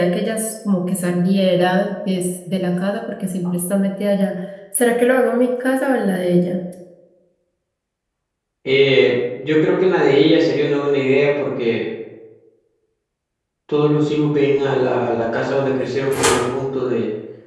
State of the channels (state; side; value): identical; both; correlation 1.00